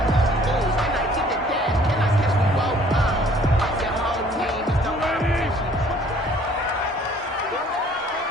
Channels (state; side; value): normal; both; correlation 0.57